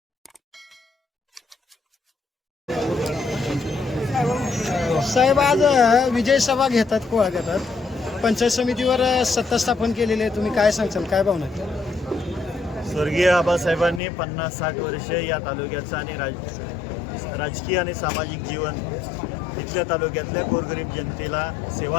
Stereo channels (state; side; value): drops out; right; at 14.0 s